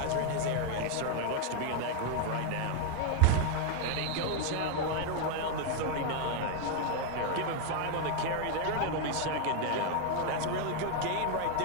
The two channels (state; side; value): different; both; correlation 0.01